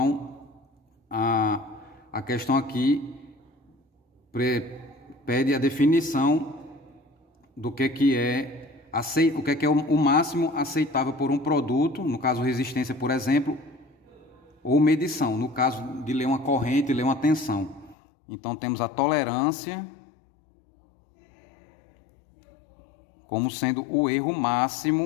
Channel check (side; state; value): right; drops out; at 17.9 s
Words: a questão aqui pede a definição do que é o máximo aceitável por um produto, no caso resistência, por exemplo, ou medição, no caso de ler uma corrente, ler uma tensão. Então, temos a tolerância como sendo o erro